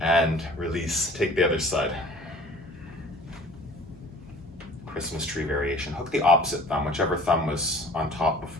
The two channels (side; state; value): both; normal; correlation 0.48